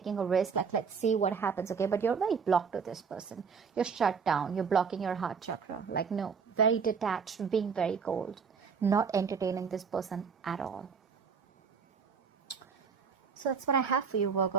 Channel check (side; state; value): left; quieter; 6.0 dB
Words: a risk, like, let's see what happens, okay? But you're very blocked to this person. You're shut down. You're blocking your heart chakra. Like, no, very detached, being very cold, not entertaining this person at all. So that's what I have for you,